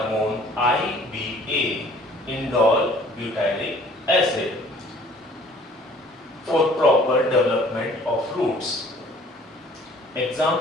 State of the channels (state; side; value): normal; both; correlation 0.54